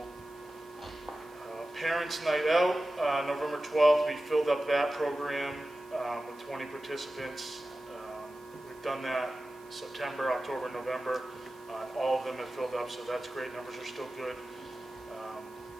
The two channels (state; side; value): noise; right; hiss, 27 dB below the sound